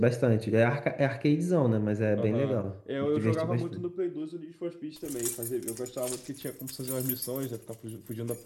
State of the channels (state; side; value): identical; both; correlation 1.00